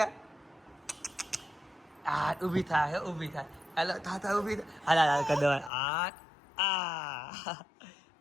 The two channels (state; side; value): drops out; right; at 5.7 s